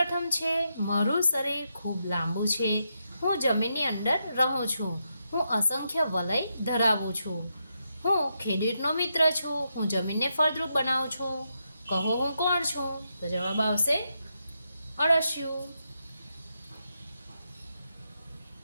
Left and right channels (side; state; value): both; inverted; correlation -0.83